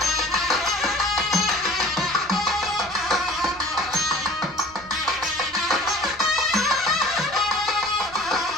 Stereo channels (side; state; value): right; noise; rumble, 22 dB below the sound